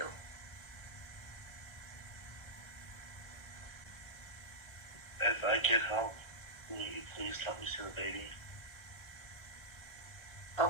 If I get help, will you please let me see the baby? I'll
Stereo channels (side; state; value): right; late; 1.3 ms